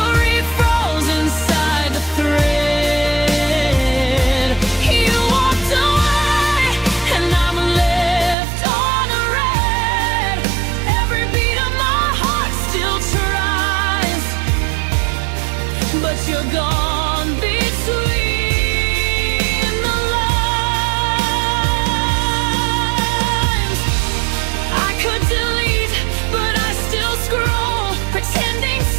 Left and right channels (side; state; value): left; drops out; at 8.3 s